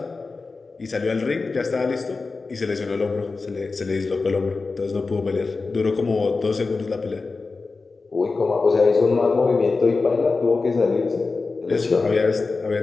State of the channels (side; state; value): right; quieter; 4.0 dB